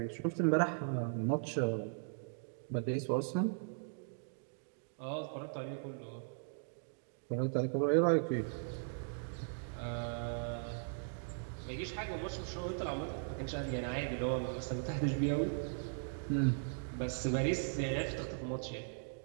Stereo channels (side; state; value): left; silent; digital silence